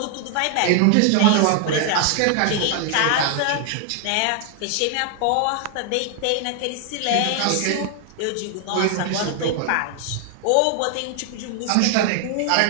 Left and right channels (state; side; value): different; both; correlation 0.00